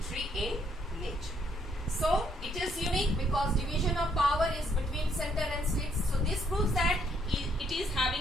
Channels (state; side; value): normal; both; correlation 0.70